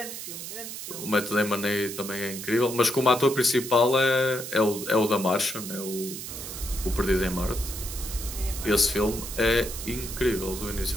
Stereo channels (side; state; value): right; noise; hiss, 8 dB below the sound